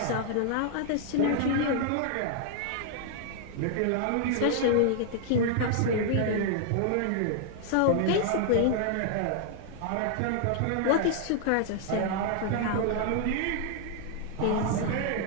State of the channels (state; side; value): different; both; correlation 0.00